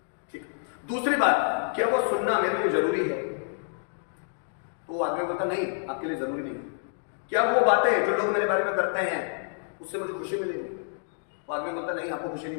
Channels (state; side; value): silent; right; digital silence